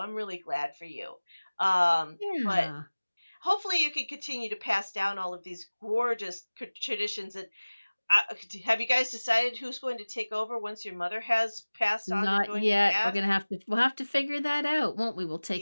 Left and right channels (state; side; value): inverted; both; correlation -1.00